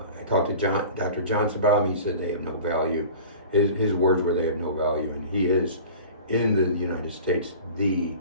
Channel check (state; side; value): inverted; both; correlation -0.40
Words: talked to Dr. Johnson about them. He said they have no value. His words were they have no value, and he is, in the United States, the